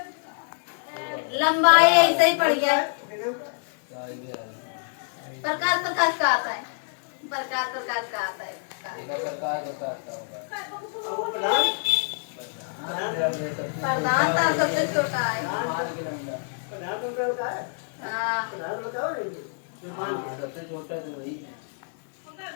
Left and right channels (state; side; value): silent; right; digital silence